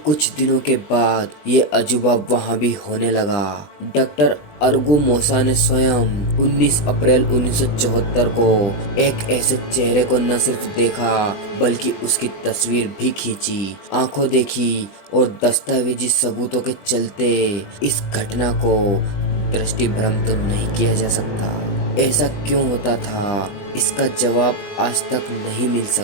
कुछ दिनों के बाद ये अजूबा वहां भी होने लगा। डॉक्टर अर्गुमोसा ने स्वयं 19 अप्रैल 1974 को एक ऐसे चेहरे को न सिर्फ देखा बल्कि उसकी तस्वीर भी खींची। आंखों देखी और दस्तावेजी सबूतों के चलते इस घटना को दृष्टि भ्रम तो नहीं किया जा सकता। ऐसा क्यों होता था, इसका जवाब आज तक नहीं मिल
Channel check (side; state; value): right; late; 20 ms